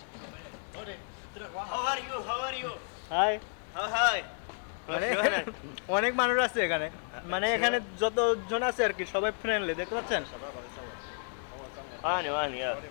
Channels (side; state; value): right; silent; 57 dB below the other